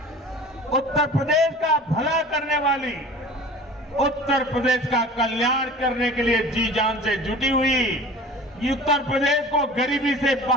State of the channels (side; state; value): both; normal; correlation 0.41